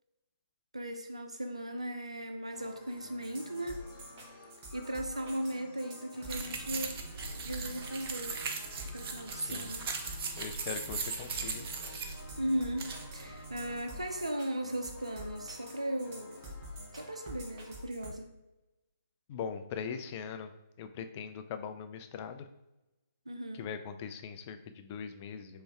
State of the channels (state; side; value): inverted; both; correlation -0.70